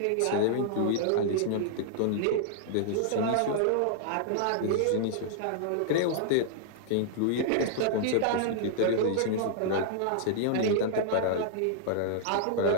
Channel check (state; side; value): different; both; correlation -0.01